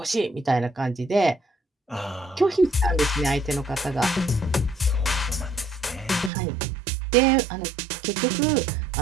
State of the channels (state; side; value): drops out; left; at 6.3 s